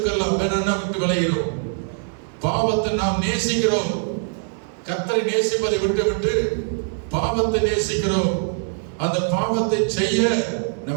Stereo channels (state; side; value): silent; left; digital silence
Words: வேணும்னா விட்டு விளைகிறோம். பாவத்தை நாம் நேசிக்கிறோம். கர்த்தரை நேசிப்பதை விட்டு பாவத்தை நேசிக்கிறோம். அந்த பாவத்தை செய்ய